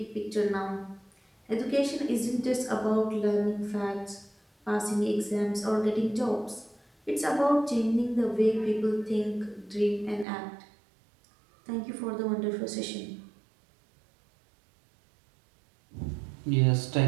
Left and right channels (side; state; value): left; drops out; at 10.2 s